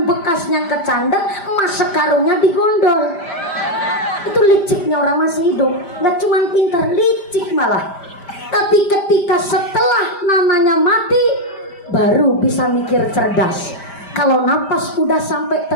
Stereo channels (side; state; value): right; late; 5.1 ms